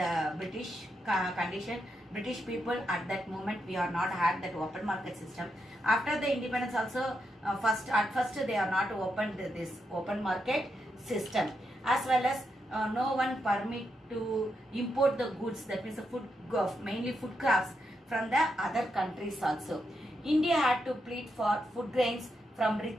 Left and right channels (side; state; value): both; normal; correlation 0.83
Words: British condition, British people at that moment, we are not had that open market system. After the independence also, at first they are not opened this open market system, as well as no one permit to import the goods, that means the food, mainly food crops from the other countries also. India had to plead for food grains from